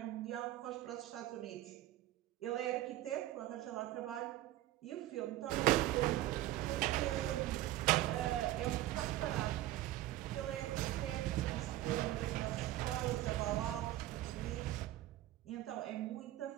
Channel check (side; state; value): left; quieter; 15.0 dB